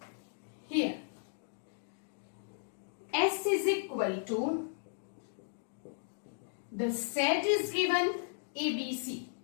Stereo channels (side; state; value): right; silent; digital silence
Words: here S is equal to, the set is given ABC.